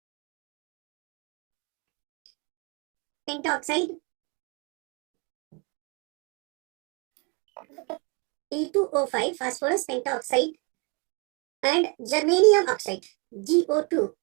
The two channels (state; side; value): quieter; left; 32.5 dB